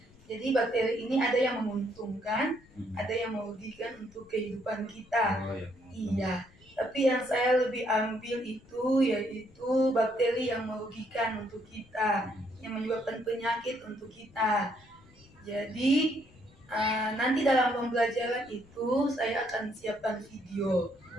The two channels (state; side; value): noise; left; rumble, 26 dB below the sound